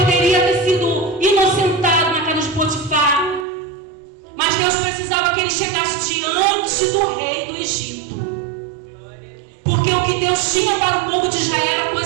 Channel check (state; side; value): drops out; left; at 3.5 s